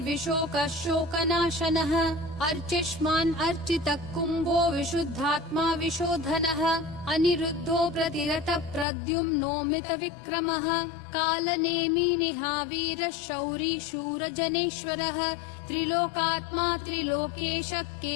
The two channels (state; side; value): drops out; right; at 8.8 s